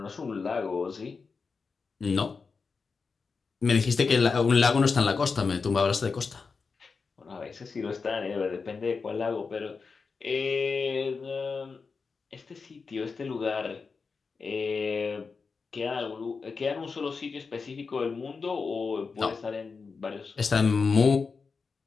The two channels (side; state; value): right; quieter; 4.8 dB